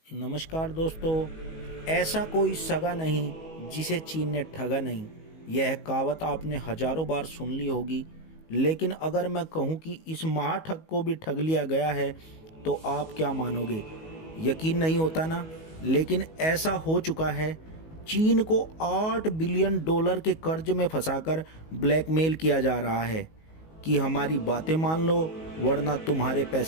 नमस्कार दोस्तों। ऐसा कोई सगा नहीं जिसे चीन ने ठगा नहीं। यह कहावत आपने हजारों बार सुन ली होगी, लेकिन अगर मैं कहूँ कि इस महाठग को भी ठग लिया गया है तो आप क्या मानोगे? यकीन नहीं होता ना। लेकिन ऐसा हो चुका है। चीन को $8 बिलियन के कर्ज में फंसाकर ब्लैकमेल किया जा रहा है कि हमारी बातें मान लो वरना तुम्हारे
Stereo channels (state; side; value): late; right; 19 ms